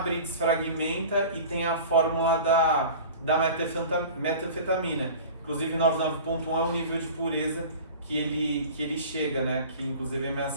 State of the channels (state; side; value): inverted; both; correlation -0.39